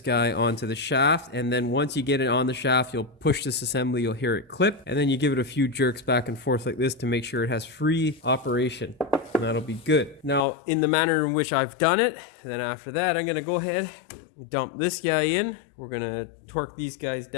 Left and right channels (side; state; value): right; drops out; at 10.5 s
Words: guy onto the shaft. And then once you get it on the shaft, you'll push this assembly, you'll hear it clip. And then you give it a few jerks back and forth like this to make sure it has free operation. And that'll be good. Now, in the manner in which I've done it, then after that, I'm going to go ahead and dump this guy in. We're going to torque these guys